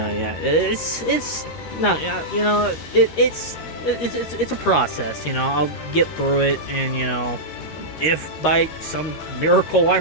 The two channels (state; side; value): late; right; 13 ms